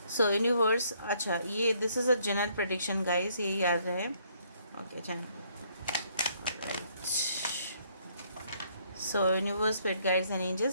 सो यूनिवर्स, अच्छा ये this is a general prediction guys, ये याद रहे। Okay, channel so universe, spirit guides and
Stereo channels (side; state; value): both; inverted; correlation -0.67